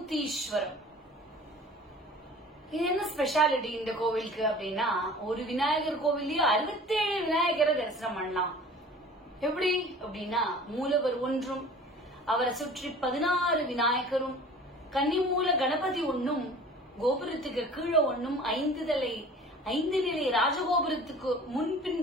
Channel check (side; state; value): both; normal; correlation 0.44